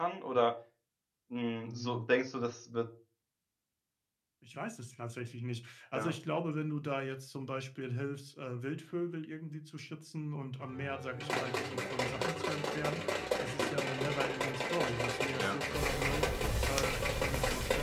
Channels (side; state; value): both; identical; correlation 1.00